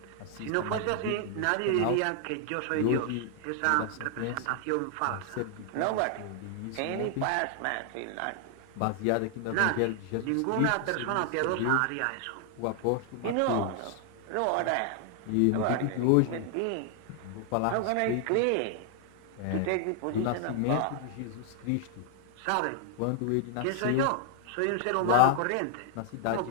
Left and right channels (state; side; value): different; both; correlation 0.00